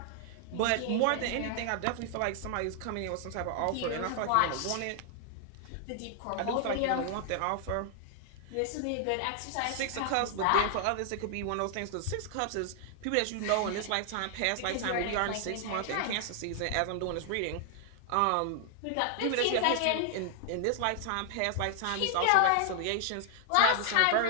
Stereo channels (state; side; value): different; both; correlation 0.00